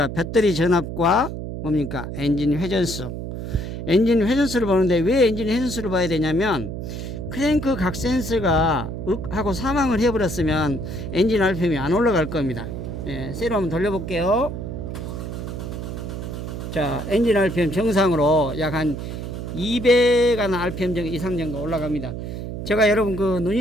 배터리 전압과 뭡니까, 엔진 회전수. 엔진 회전수를 보는데 왜 엔진 회전수를 봐야 되냐면, 크랭크 각 센서가 하고 사망을 해버렸으면 엔진 RPM이 안 올라갈 겁니다. 세로 한번 돌려볼게요. 자, 엔진 RPM 정상으로 약 한 200한 RPM 이상 정도 올라갑니다. 제가 여러분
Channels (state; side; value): noise; right; hum, 6 dB below the sound